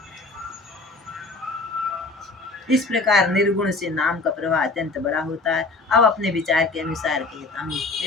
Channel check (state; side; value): quieter; right; 3.4 dB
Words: इस प्रकार निर्गुण से नाम का प्रभाव अत्यंत बड़ा होता है। अब अपने विचार के अनुसार कहता हूँ।